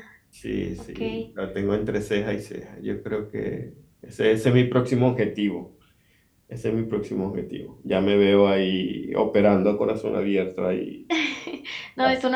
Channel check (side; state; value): both; identical; correlation 1.00